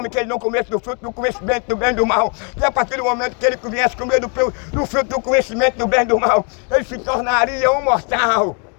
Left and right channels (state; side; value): quieter; right; 37.7 dB